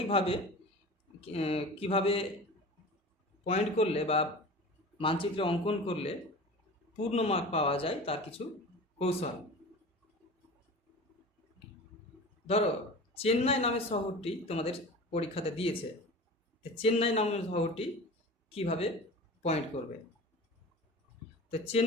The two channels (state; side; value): normal; both; correlation 0.36